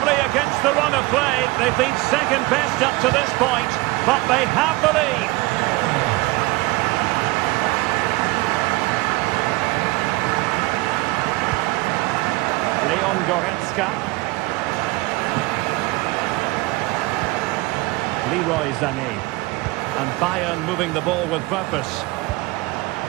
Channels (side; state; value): left; quieter; 21.9 dB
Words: against the run of play, they've been second best up to this point, but they have the lead. Leon Goretzka. Leroy Sané. And Bayern moving the ball with purpose.